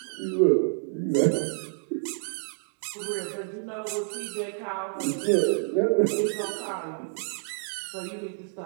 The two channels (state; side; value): silent; left; digital silence